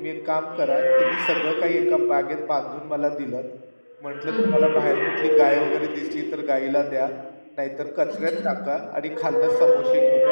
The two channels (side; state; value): both; inverted; correlation -1.00